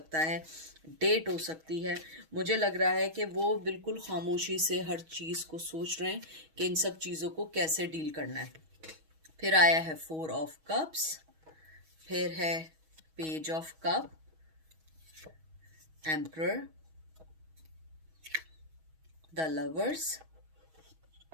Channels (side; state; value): left; late; 6.3 ms